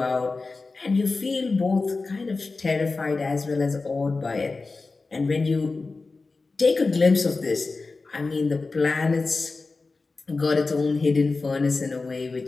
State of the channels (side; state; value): right; quieter; 3.8 dB